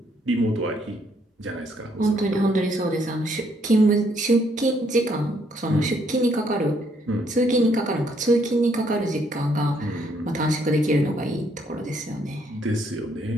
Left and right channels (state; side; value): normal; both; correlation 0.70